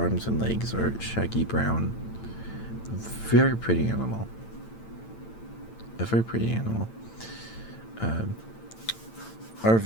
and legs are shaggy brown. Very pretty animal. A very pretty animal.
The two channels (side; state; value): right; late; 8.9 ms